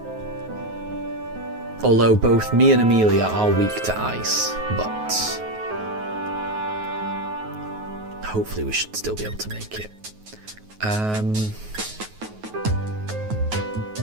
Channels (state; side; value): late; left; 9.4 ms